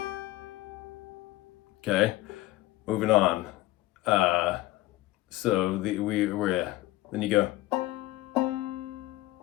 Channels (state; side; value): quieter; right; 17.4 dB